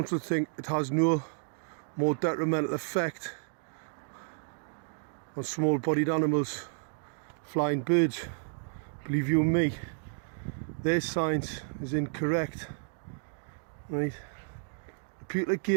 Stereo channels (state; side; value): silent; left; digital silence